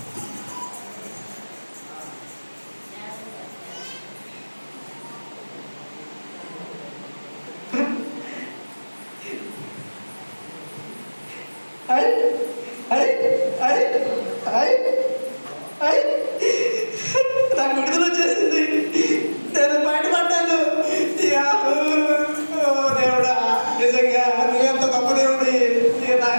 నాకు విడుదల వచ్చేసింది, నేను బయటపడ్డాను. దేవుడా, నిజంగా నువ్వెంత గొప్ప దేవుడి, నా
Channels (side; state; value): both; inverted; correlation -1.00